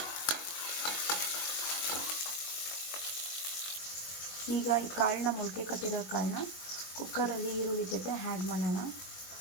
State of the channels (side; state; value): right; late; 22 ms